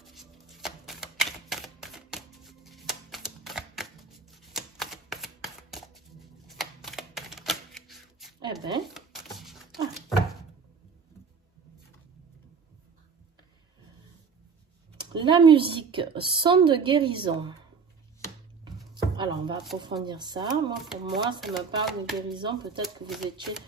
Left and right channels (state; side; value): quieter; left; 5.4 dB